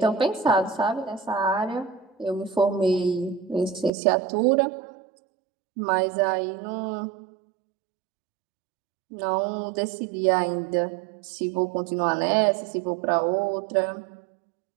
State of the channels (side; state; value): left; drops out; at 3.9 s